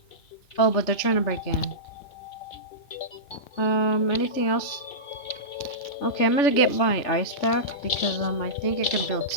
Oh, but they're trying to break in. Anything else? Okay, I'm gonna get my ice back because I think I can build.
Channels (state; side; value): late; right; 3.4 ms